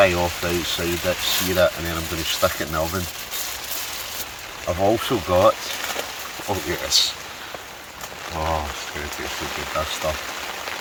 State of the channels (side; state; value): both; identical; correlation 1.00